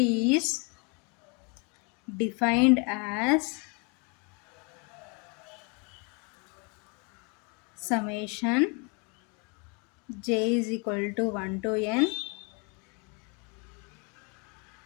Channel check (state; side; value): quieter; right; 33.4 dB